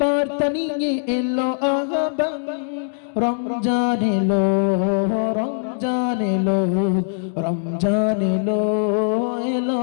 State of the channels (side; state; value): right; silent; 65 dB below the other